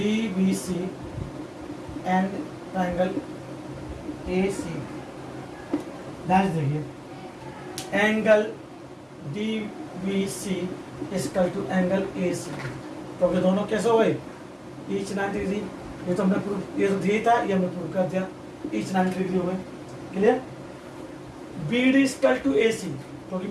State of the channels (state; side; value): identical; both; correlation 1.00